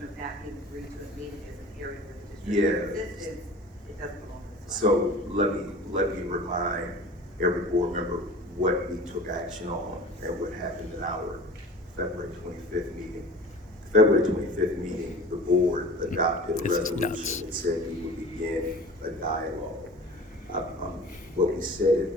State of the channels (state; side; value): normal; both; correlation 0.40